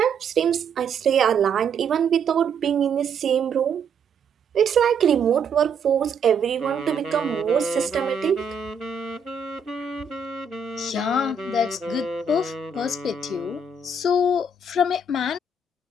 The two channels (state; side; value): quieter; left; 4.0 dB